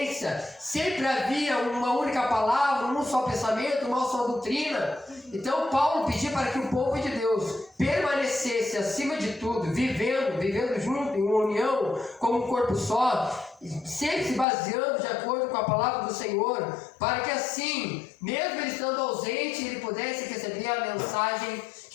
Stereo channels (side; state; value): right; drops out; at 14.5 s